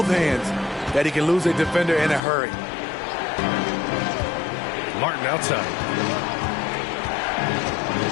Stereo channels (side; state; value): right; drops out; at 2.2 s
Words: hands that he can lose a defender in a hurry. Martin outside.